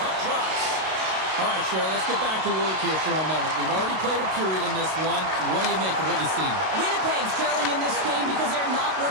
puck drops. All right, Cheryl, let's get back to work here for a moment. We've already played a period in this one. What do you make of what you've seen? Winnipeg's trailing in this game because they're not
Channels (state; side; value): late; left; 32 ms